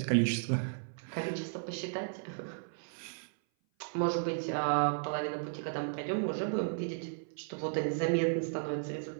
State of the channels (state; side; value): silent; left; 55 dB below the other